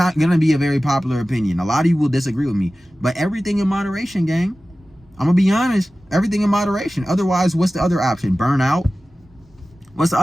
going to be a very popular opinion. A lot of you will disagree with me. But everything in moderation, gang. I'm going to be honest. Everything in moderation. Otherwise, what's the other option? Burnout. What's the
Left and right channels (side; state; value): both; normal; correlation 0.96